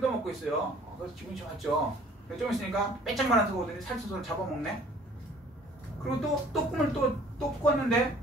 있어요. 그래서 기분이 좋았죠. 좀 있으니까 빼짝만한 소가 오더니 살찐소를 잡아먹네. 그리고 또 꿈을 또 꿨는데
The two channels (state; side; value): normal; both; correlation 0.54